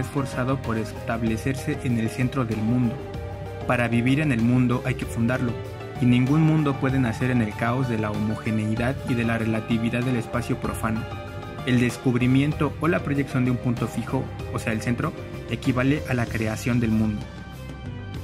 por establecerse en el centro del mundo. Para vivir en el mundo hay que fundarlo, y ningún mundo puede nacer en el caos de la homogeneidad y de la relatividad del espacio profano. El descubrimiento o la proyección de un punto fijo, o sea el centro, equivale a la creación del mundo.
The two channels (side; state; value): both; identical; correlation 1.00